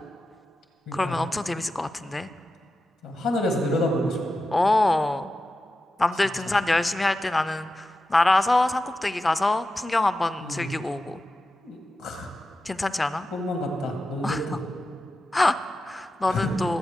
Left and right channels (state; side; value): normal; both; correlation 0.91